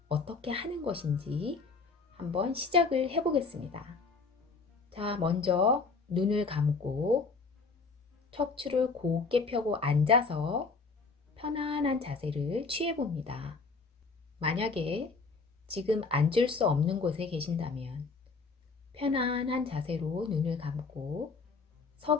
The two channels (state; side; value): quieter; right; 4.4 dB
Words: 어떻게 하는 것인지 한번 시작을 해보겠습니다. 자, 먼저 눈을 감고 척추를 곧게 펴고 앉아서 편안한 자세를 취해봅니다. 만약에 지금 앉을 수 없는 곳에 계신다면 편안한 자세로 눈을 감고 서